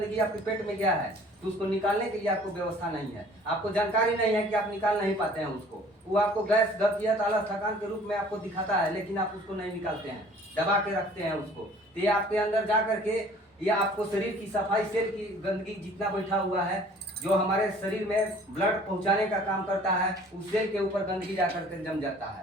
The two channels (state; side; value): normal; both; correlation 0.52